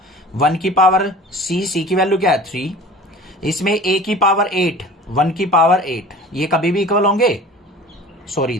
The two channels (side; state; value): both; normal; correlation 0.42